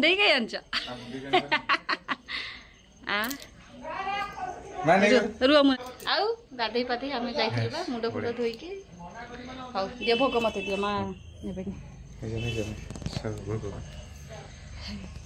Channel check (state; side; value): identical; both; correlation 1.00